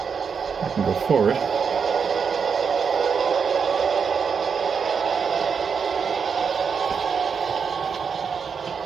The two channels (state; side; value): quieter; left; 6.2 dB